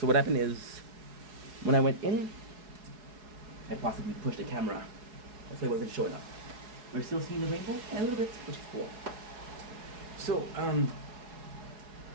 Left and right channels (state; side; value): late; left; 4.7 ms